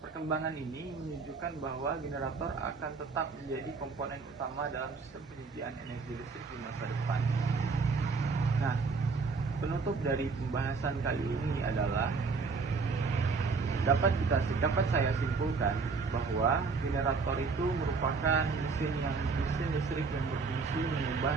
Perkembangan ini menunjukkan bahwa generator akan tetap menjadi komponen utama dalam sistem penyediaan energi listrik di masa depan. Nah, penutup dari pembahasan kali ini adalah dapat saya simpulkan bahwa generator itu merupakan mesin listrik yang berfungsi mengubah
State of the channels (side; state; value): left; quieter; 4.6 dB